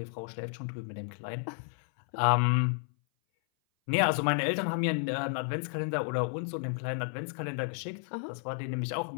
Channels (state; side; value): silent; right; 57 dB below the other